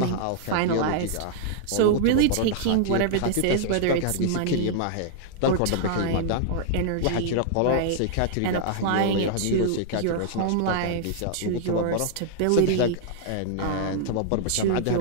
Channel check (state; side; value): different; both; correlation -0.01